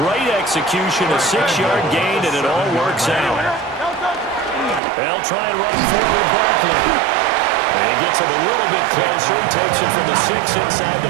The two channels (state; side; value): drops out; left; at 4.8 s